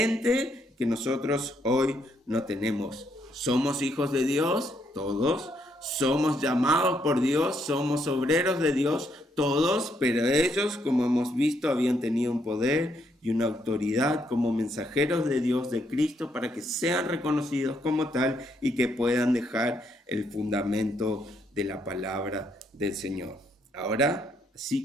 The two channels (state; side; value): normal; both; correlation 0.74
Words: que nosotros hoy no tenemos. Somos hijos de Dios, todos. Somos llamados por Dios, somos obreros de Dios, todos, pero ellos, como hemos visto, habían tenido un poder y una autoridad como mensajeros de Dios, de Cristo, para que sean reconocidos como tal y que puedan dejar el fundamento de la palabra del Señor. Ahora, así